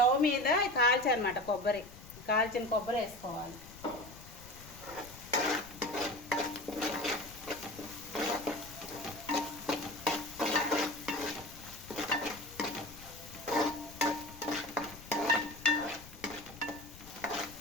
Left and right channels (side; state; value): left; noise; rumble, 18 dB below the sound